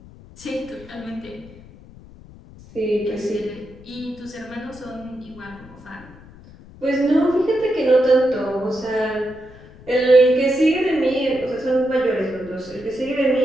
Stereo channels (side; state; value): left; noise; rumble, 21 dB below the sound